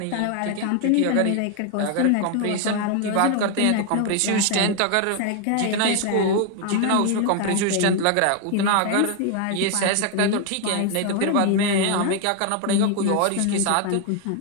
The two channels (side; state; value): both; different; correlation 0.00